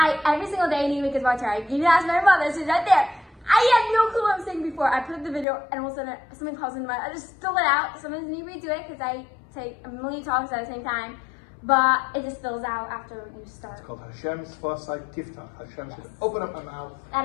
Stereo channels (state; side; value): drops out; right; at 5.5 s